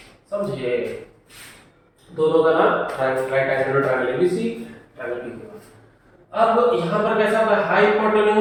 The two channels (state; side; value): identical; both; correlation 1.00